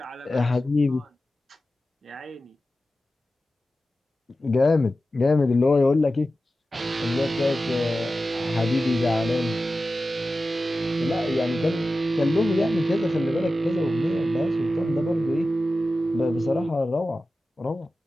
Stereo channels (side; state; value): both; normal; correlation 0.94